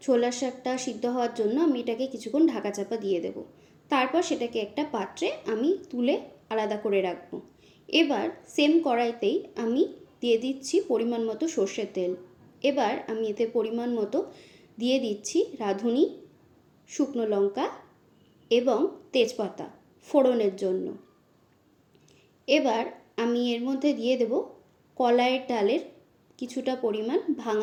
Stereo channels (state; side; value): identical; both; correlation 1.00